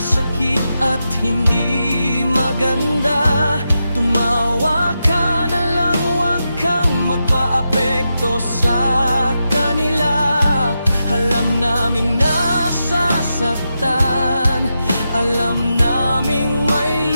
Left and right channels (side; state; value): both; inverted; correlation -0.88